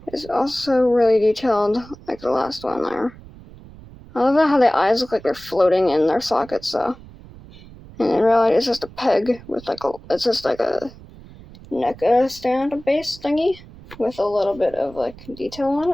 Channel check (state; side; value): noise; right; rumble, 20 dB below the sound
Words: is also really detailed, like the last one there. I love how the eyes look like they're floating in their sockets, though. And in reality, it's just a peg with it's just like a NECA stand base thingy with a little bit of, like, detail on